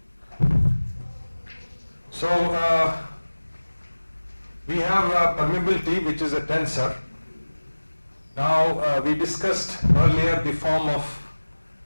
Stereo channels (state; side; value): inverted; both; correlation -1.00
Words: So we have permeability, which is a tensor. Now we discussed earlier the form of